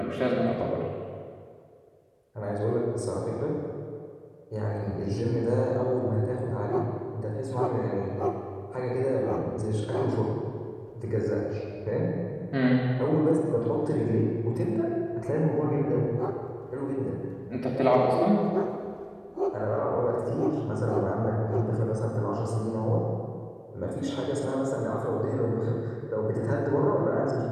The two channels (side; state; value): both; identical; correlation 1.00